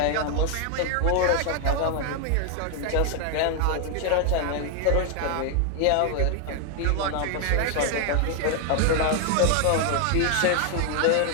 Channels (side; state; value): both; different; correlation 0.00